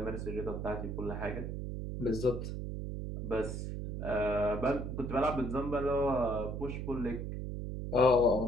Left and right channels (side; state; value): right; noise; hum, 4 dB below the sound